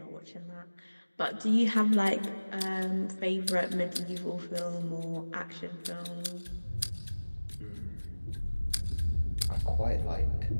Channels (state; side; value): inverted; both; correlation -1.00